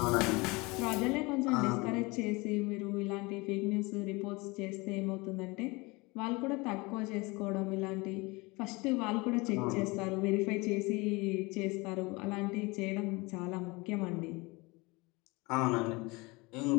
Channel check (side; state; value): right; quieter; 24.9 dB